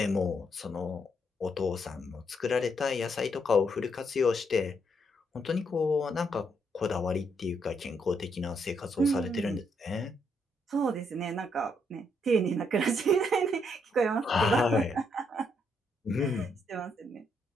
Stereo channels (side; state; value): both; normal; correlation 0.75